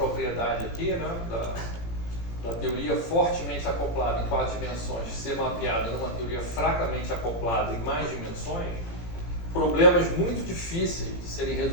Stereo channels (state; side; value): late; right; 17 ms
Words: aqui, né, da teoria fortemente acoplada em 4 dimensões ser mapeada numa teoria fracamente acoplada em mais dimensões, problemas muito difíceis de serem